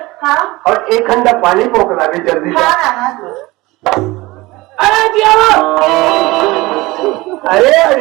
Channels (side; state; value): left; quieter; 20.9 dB